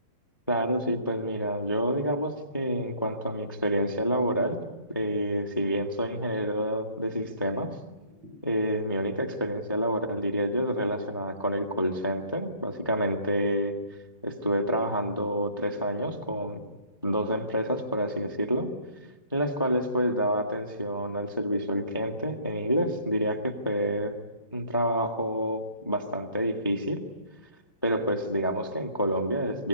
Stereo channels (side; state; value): both; inverted; correlation -0.57